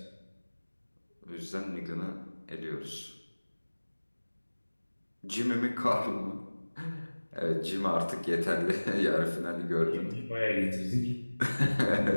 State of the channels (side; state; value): both; inverted; correlation -1.00